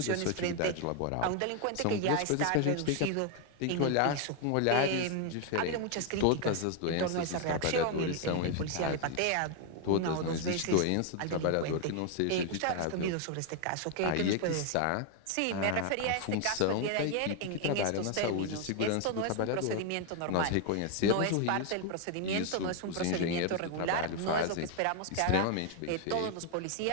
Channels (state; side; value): different; both; correlation 0.01